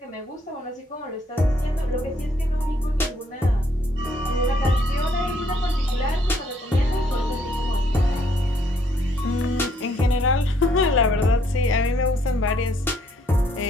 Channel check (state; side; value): normal; both; correlation 0.68